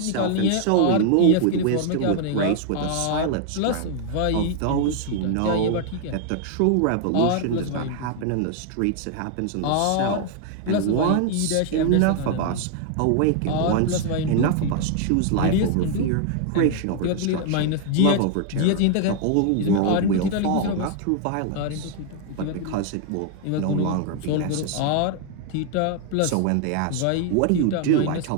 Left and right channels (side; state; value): both; different; correlation 0.00